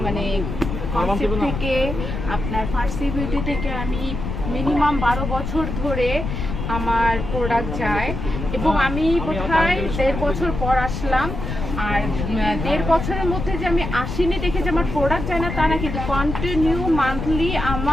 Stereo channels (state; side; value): noise; left; rumble, 5 dB below the sound